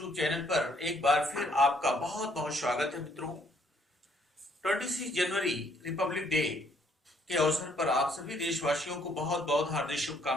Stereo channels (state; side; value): normal; both; correlation 0.66